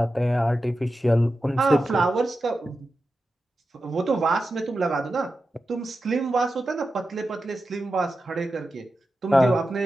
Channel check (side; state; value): both; normal; correlation 0.91